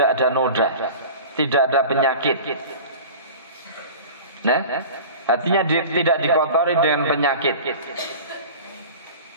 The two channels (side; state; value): both; inverted; correlation -0.37